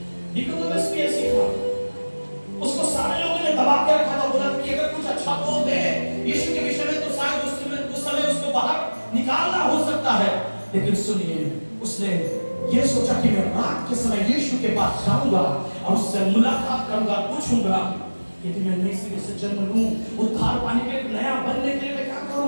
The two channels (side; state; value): both; inverted; correlation -1.00